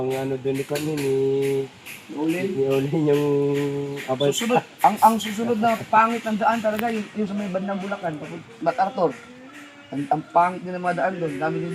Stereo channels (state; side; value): identical; both; correlation 1.00